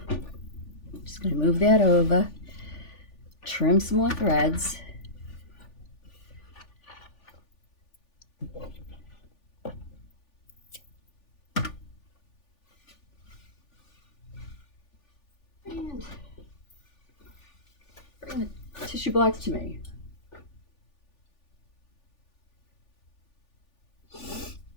Just gonna move that over. Trim some more threads. And bring the tissue blocks to me.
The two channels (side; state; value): right; late; 3.4 ms